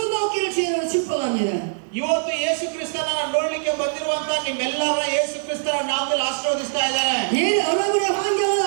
없기를 주의로 축복합니다. ಇವತ್ತು ಯೇಸು ಕ್ರಿಸ್ತನ ನೋಡ್ಲಿಕ್ಕೆ ಬಂದಿರುವಂತ ನಿಮ್ಮೆಲ್ಲರನ್ನ ಯೇಸು ಕ್ರಿಸ್ತನ ನಾಮದಲ್ಲಿ ಆಶೀರ್ವದಿಸ್ತಾ ಇದ್ದಾರೆ. 예, 여러분의 환경은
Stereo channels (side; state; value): left; silent; digital silence